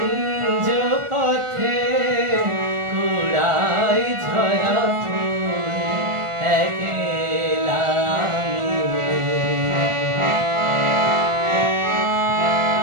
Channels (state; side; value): late; left; 1.4 ms